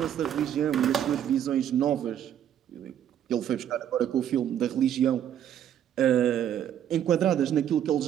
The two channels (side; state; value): left; quieter; 10.1 dB